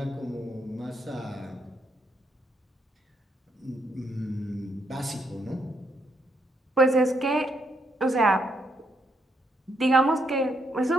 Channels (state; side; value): normal; both; correlation 0.76